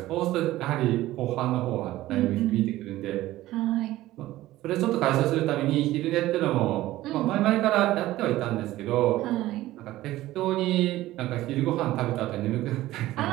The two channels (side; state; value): left; quieter; 16.0 dB